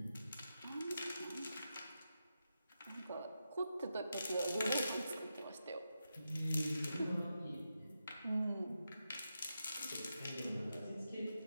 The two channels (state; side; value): inverted; both; correlation -0.88